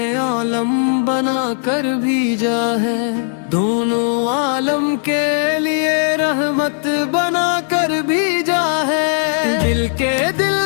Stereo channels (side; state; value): right; silent; digital silence